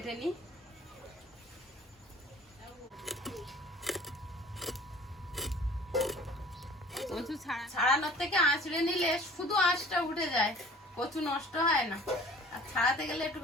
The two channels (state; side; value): normal; both; correlation 0.48